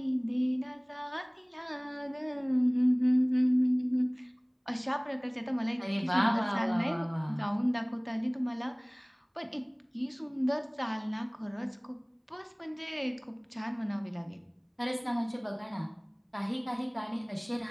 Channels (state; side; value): identical; both; correlation 1.00